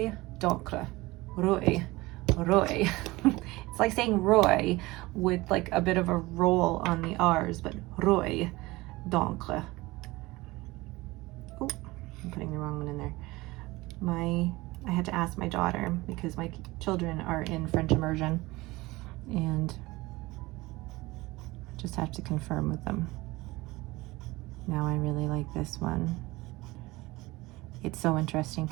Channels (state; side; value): quieter; left; 20.8 dB